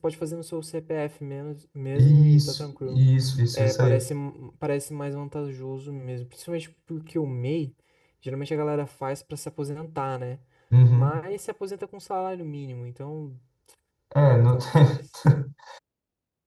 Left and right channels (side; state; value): both; identical; correlation 1.00